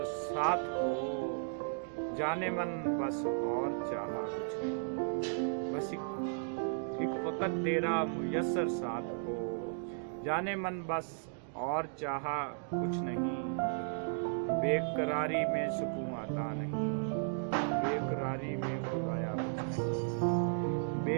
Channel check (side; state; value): left; silent; digital silence